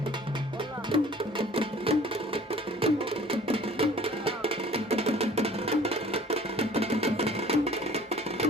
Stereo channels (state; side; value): normal; both; correlation 0.51